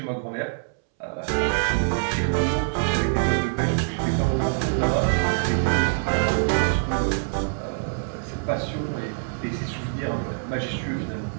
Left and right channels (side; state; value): left; silent; 62 dB below the other